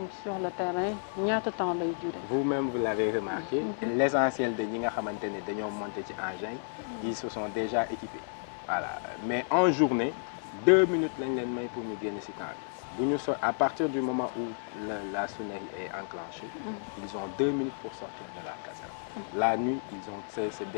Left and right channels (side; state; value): right; silent; 57 dB below the other